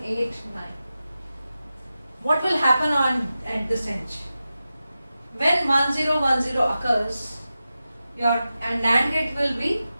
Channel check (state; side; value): inverted; both; correlation -0.93